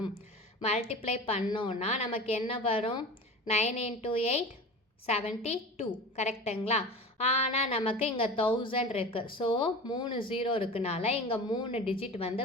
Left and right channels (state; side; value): normal; both; correlation 0.34